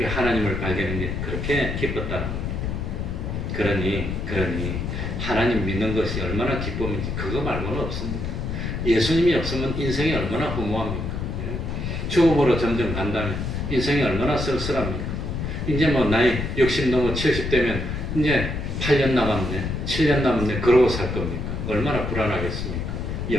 하나님을 발견한 게 그렇게 기뻤다는 거예요. 그러니 하나님 믿는 것이 얼마나 기쁨인지 그거 말고는 없습니다. 예수님이 없으면 인생이 얼마나 허무합니까? 죽음으로 점점 간다면 인생이 얼마나 쓸쓸합니까? 이제 뭐 나이 60 넘어 70 되면 이제 8년 남았네, 7년 남았네 그러고 살 겁니까? 얼마나 불안하겠습니까?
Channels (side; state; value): left; noise; rumble, 3 dB below the sound